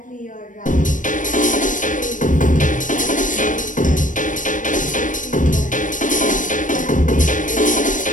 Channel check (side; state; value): right; late; 0.38 ms